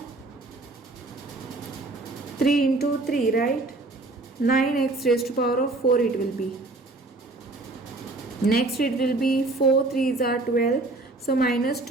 3 into 3, right? 9x raised to power of 4 it will be. Next it will be 4 3s are 12, so minus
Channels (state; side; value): quieter; left; 3.1 dB